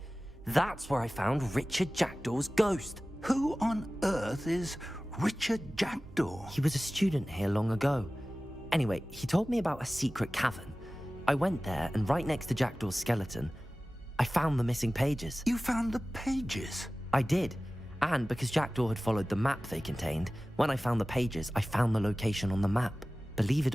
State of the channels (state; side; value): normal; both; correlation 0.97